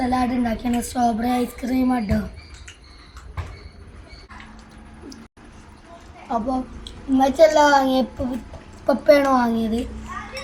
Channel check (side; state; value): both; identical; correlation 1.00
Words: ഉണ്ടാക്കിയാണ്. സ്ട്രോബെറി ഐസ്ക്രീം കേട്ടോ. അപ്പോൾ ഉമ്മച്ചി എല്ലാം വാങ്ങിയപ്പോൾ പപ്പയാണ് വാങ്ങിയത്.